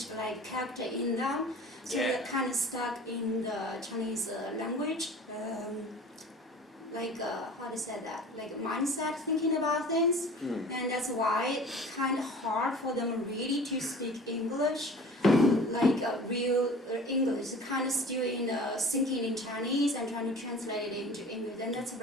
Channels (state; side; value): normal; both; correlation 0.43